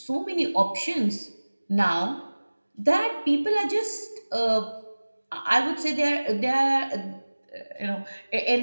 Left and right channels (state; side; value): inverted; both; correlation -1.00